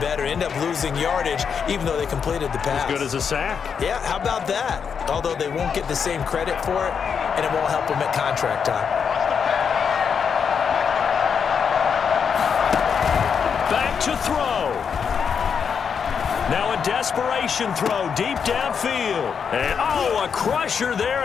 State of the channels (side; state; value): right; quieter; 6.7 dB